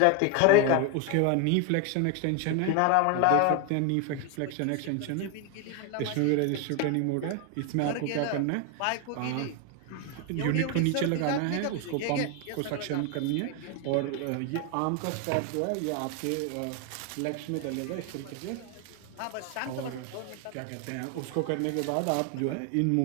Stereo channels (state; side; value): different; both; correlation 0.01